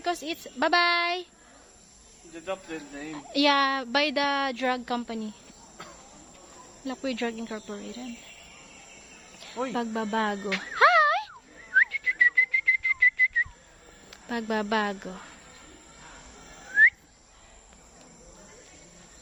it's bye-bye. the adopted name. Yeah, by the drug company. Lakpue Drug Incorporated. Oi. Pagbabago. Hi! Pagbabago.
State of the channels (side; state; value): both; identical; correlation 1.00